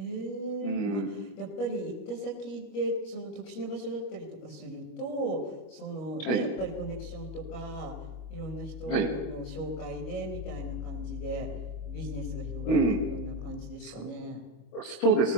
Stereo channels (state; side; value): late; right; 25 ms